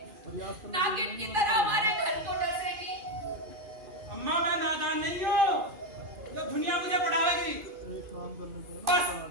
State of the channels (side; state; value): left; late; 2.5 ms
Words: नागिन की तरह हमारे घर को डसेगी। अम्मा, मैं नादान नहीं हूँ जो दुनिया मुझे पढ़ाएगी। बस